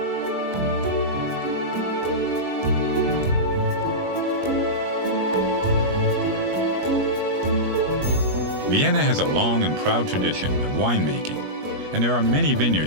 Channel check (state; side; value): late; left; 21 ms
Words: Vienna has a long and proud tradition of winemaking, and there are many